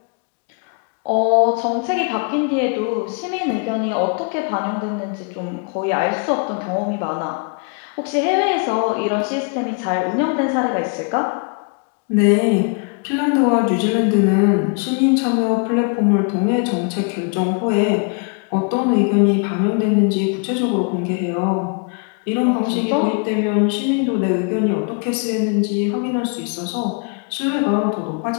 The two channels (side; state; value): right; quieter; 37.3 dB